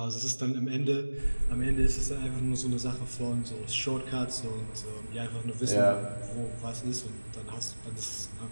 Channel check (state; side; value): inverted; both; correlation -1.00